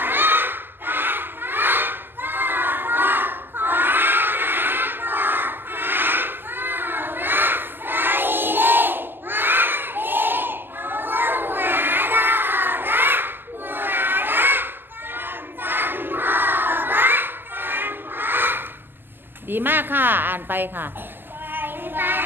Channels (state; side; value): late; left; 0.095 ms